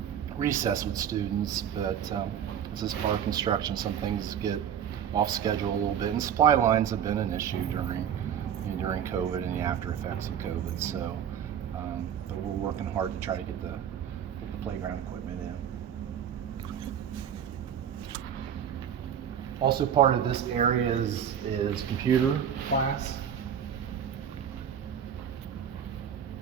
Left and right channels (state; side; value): quieter; left; 8.8 dB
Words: recess with students, but this is part of construction. Some things get off schedule a little bit, and supply lines have been an issue during COVID and the after effects of COVID. So, but we're working hard to try to get the playground equipment in. Also, part of this area is computer class.